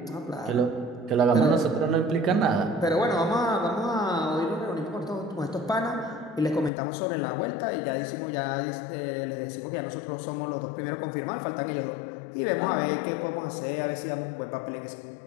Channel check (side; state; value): right; drops out; at 6.7 s